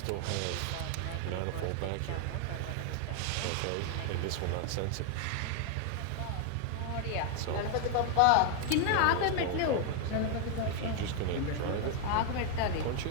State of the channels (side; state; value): both; different; correlation 0.00